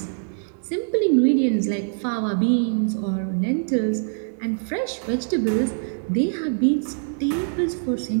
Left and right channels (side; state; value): left; silent; digital silence